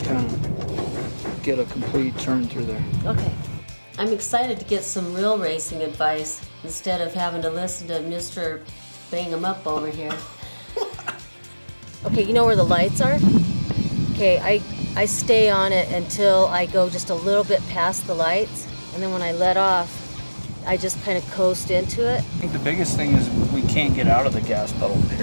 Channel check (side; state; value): both; inverted; correlation -1.00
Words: of get a complete turn through there. Okay. I'm excited to get some real racing advice instead of having to listen to Mr. Bang 'em up over here. Okay, you know where the lights are? Okay, I stay on it until I go just a little bit past the lights, and then when I let off, I just kind of coast into it. I think the biggest thing is we can't get out of the gas pedal,